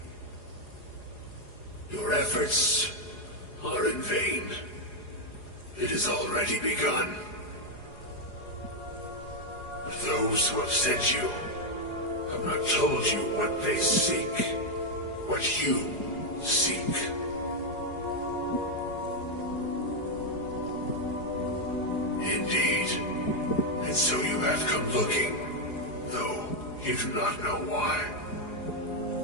Your efforts are in vain. It has already begun. But those who have sent you have not told you what they seek, what you seek. Indeed. And so you have come looking, though you do not know why.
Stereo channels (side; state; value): right; late; 4.8 ms